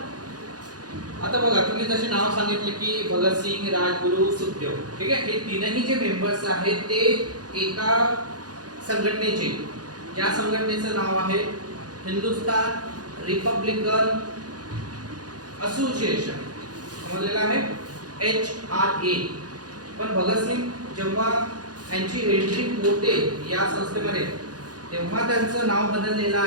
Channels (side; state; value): left; late; 0.69 ms